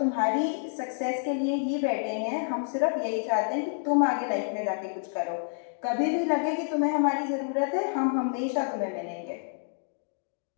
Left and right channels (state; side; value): silent; right; digital silence